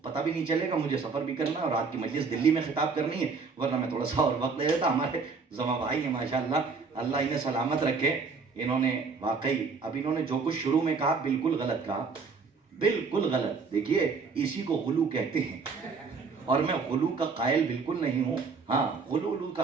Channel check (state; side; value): quieter; left; 4.8 dB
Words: پتہ بھی نہیں چلے گا, مجھے سفر بھی کرنا ہے اور رات کی مجلس دلی میں خطاب کرنی ہے, ورنہ میں تھوڑا سا اور وقت لے لیتا. ہمارے زما بھائی ہیں ماشاءاللہ, اللہ انہیں سلامت رکھے. انہوں نے واقعی اب انہوں نے جو کچھ شروع میں کہا بالکل غلط کہا, بالکل غلط. دیکھیے اسی کو غلو کہتے ہیں اور میں غلو کا قائل بالکل نہیں ہوں. ہاں غلو کا